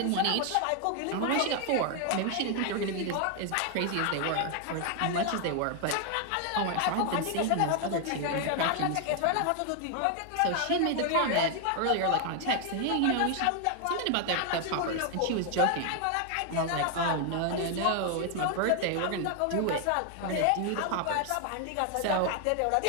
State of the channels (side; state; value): both; different; correlation 0.00